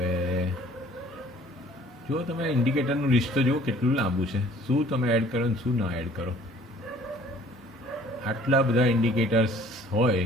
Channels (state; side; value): normal; both; correlation 0.54